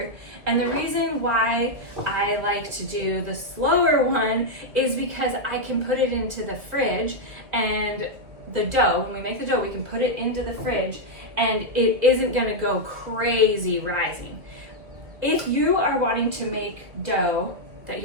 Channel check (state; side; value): late; left; 1.7 ms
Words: And the reason why I like to do the slower one is because I can put it into the fridge, and the dough, when we make the dough, we can put it into the fridge and it isn't gonna go crazy rising. If you are wanting to make dough that